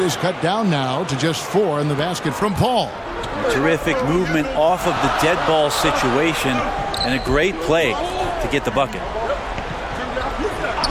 is cut down now to just 4 in the basket from Paul. Terrific movement off of the dead ball situation and a great play to get the bucket.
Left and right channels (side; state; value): both; identical; correlation 1.00